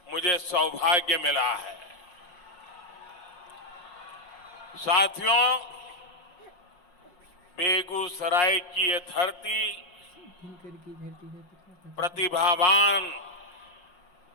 मुझे सौभाग्य मिला है। साथियों, बेगूसराय की ये धरती प्रतिभावान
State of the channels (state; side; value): late; right; 5.6 ms